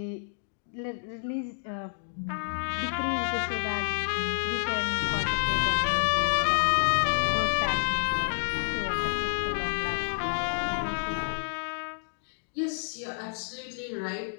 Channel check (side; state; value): right; silent; digital silence